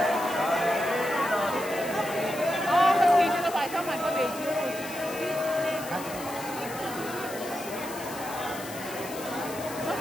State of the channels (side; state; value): left; noise; hiss, 13 dB below the sound